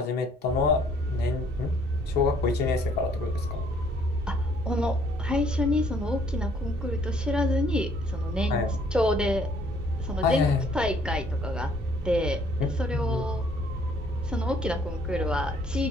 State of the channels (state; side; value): normal; both; correlation 0.62